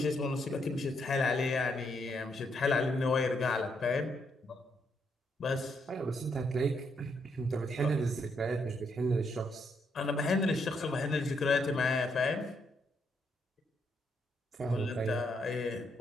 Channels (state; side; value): normal; both; correlation 0.76